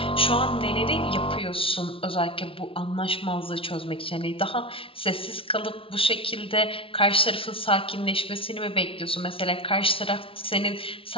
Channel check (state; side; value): late; right; 0.26 ms